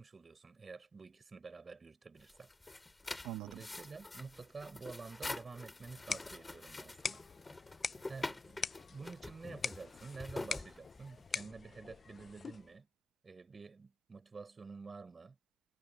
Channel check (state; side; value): normal; both; correlation 0.89